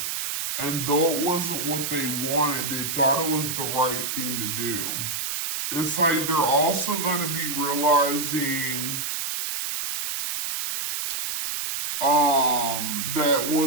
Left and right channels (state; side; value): noise; right; hiss, 3 dB below the sound